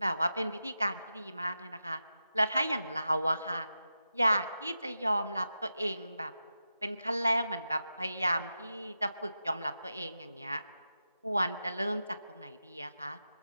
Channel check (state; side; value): inverted; both; correlation -0.91